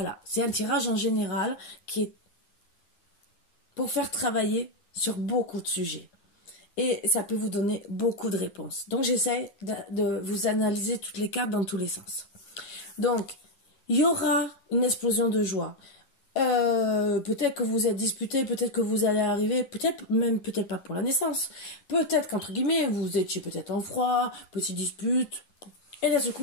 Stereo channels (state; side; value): late; right; 10 ms